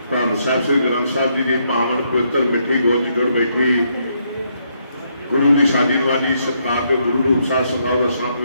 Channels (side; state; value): both; inverted; correlation -0.75